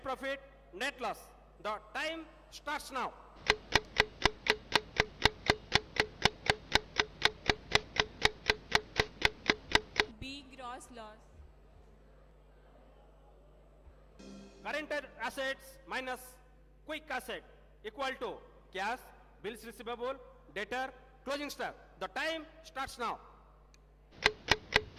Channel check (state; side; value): identical; both; correlation 1.00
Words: profit, net loss. The time starts now. B. Gross loss. Current assets minus quick asset equal to cash, bills receivable, debtor, closing stock. The time starts now.